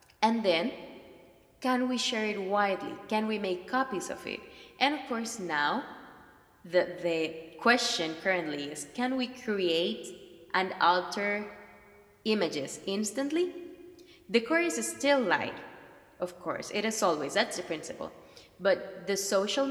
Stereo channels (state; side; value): identical; both; correlation 1.00